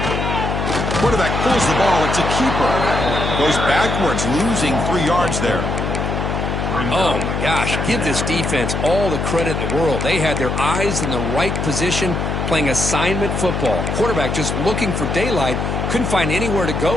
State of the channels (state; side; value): noise; left; hum, 1 dB below the sound